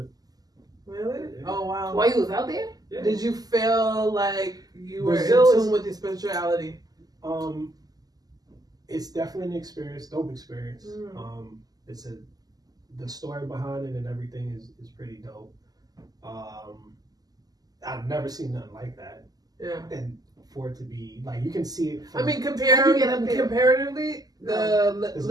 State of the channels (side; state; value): left; late; 0.18 ms